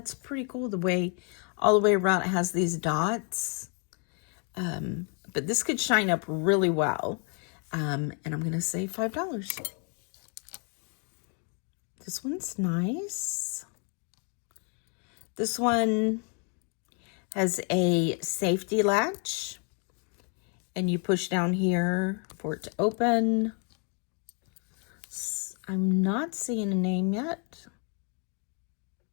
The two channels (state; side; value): quieter; right; 39.3 dB